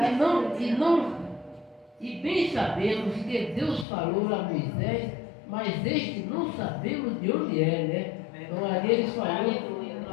E bem sabemos que Deus falou a Moisés, mas este não sabemos de onde é, né? Então ali eles falaram,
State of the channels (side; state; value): right; drops out; at 3.9 s